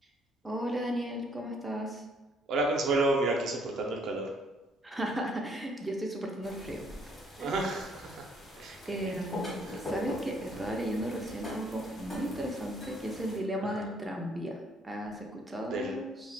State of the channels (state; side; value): normal; both; correlation 0.64